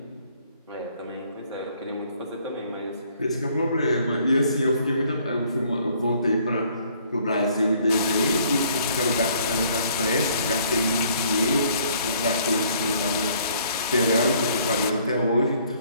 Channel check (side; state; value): both; inverted; correlation -0.62